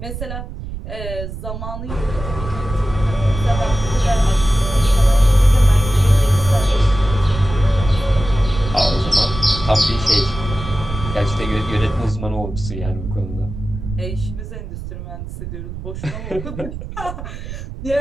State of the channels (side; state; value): right; noise; rumble, 9 dB below the sound